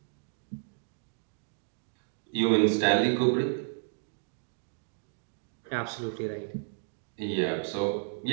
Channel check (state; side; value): silent; left; digital silence